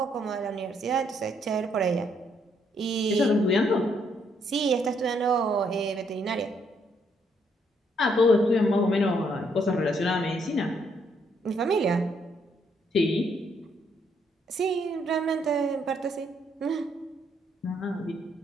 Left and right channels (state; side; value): normal; both; correlation 0.72